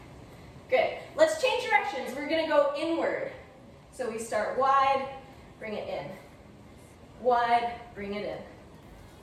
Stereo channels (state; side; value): identical; both; correlation 1.00